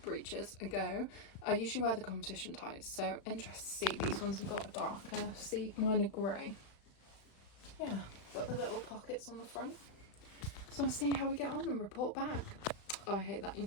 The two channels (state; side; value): late; right; 35 ms